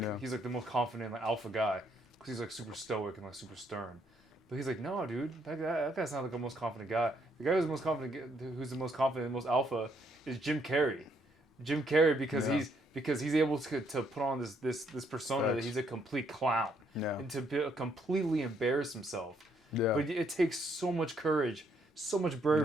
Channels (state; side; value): normal; both; correlation 0.71